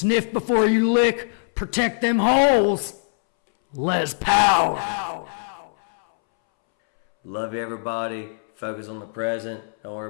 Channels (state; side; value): silent; right; 63 dB below the other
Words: before you lick, protect them holes. Les Power. Love you, everybody. Focus on the present. Don't